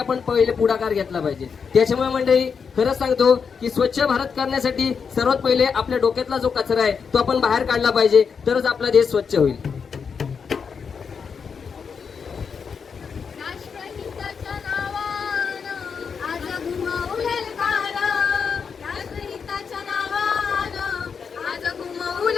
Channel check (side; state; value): right; quieter; 6.1 dB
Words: पहिले पुढाकार घेतला पाहिजे. त्याच्यामुळे मंडळी खरंच सांगतो की स्वच्छ भारत करण्यासाठी सर्वात पहिले आपल्या डोक्यातला जो कचरा आहे तो आपण बाहेर काढला पाहिजे तरच आपला देश स्वच्छ होईल. राष्ट्रहिताच्या नावानं आज घुमवलेल कार. राष्ट्रहिताच्या नावानं आज